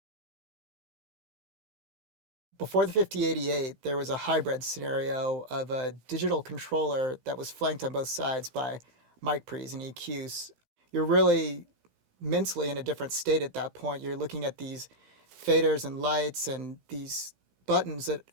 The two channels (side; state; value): left; late; 17 ms